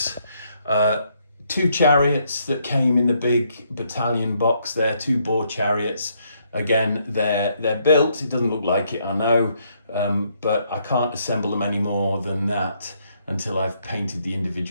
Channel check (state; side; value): inverted; both; correlation -0.73